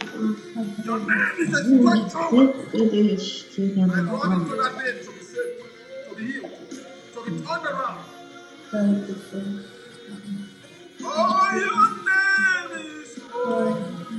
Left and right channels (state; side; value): identical; both; correlation 1.00